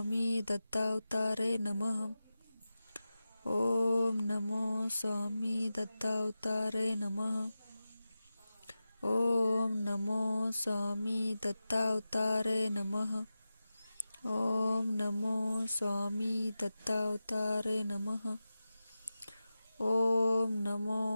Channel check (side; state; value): both; inverted; correlation -0.93